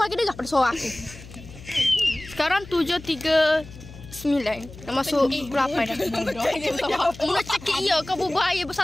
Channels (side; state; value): left; noise; hum, 17 dB below the sound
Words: dengar pada suara aku. Sekarang 7.39. Dah masuk pukul 8 dah. Mu nak cakap iya kau berbual air